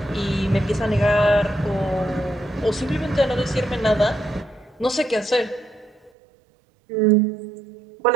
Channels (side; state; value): left; drops out; at 6.1 s